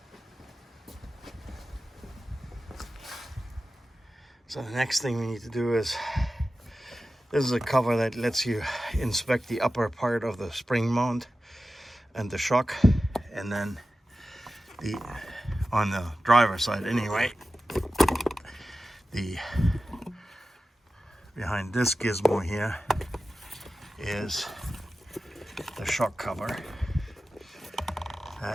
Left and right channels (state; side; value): normal; both; correlation 0.94